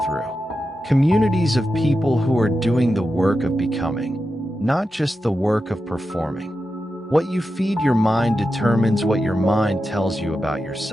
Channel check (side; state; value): both; normal; correlation 0.90